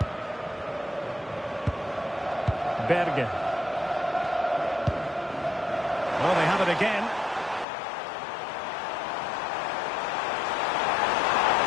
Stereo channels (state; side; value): drops out; right; at 7.7 s